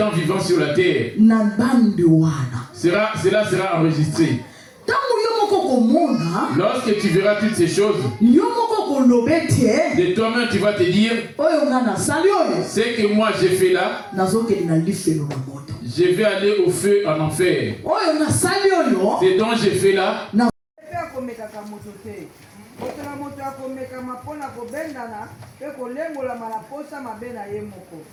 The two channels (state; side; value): identical; both; correlation 1.00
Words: vivant sur la terre. Cela sera enregistré. Lorsque tu verras toutes ces choses, de toi-même tu vas te dire, ce que moi j'ai fait là, je vais aller au feu en enfer. Ce dont j'ai fait là,